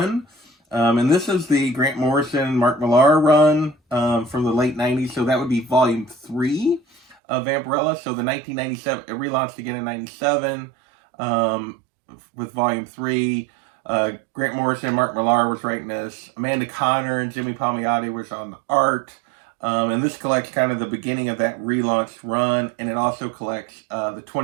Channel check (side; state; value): left; drops out; at 7.2 s